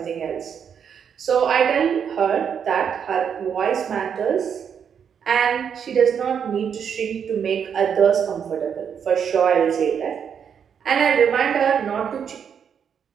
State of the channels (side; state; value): left; quieter; 7.6 dB